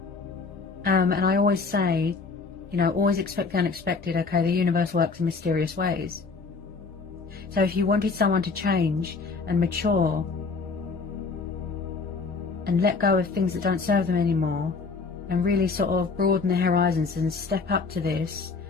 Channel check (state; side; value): quieter; right; 4.5 dB